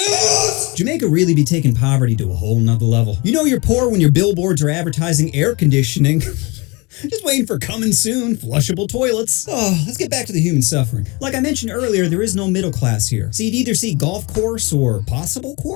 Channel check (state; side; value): quieter; right; 26.9 dB